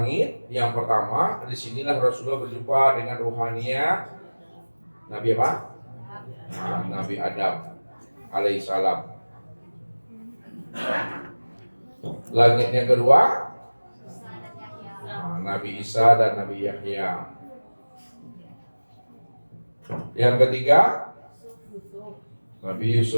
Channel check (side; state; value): both; inverted; correlation -1.00